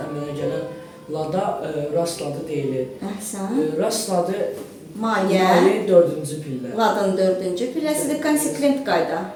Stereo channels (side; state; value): both; identical; correlation 1.00